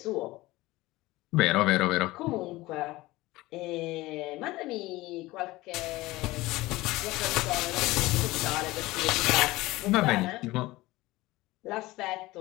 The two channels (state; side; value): quieter; right; 19.3 dB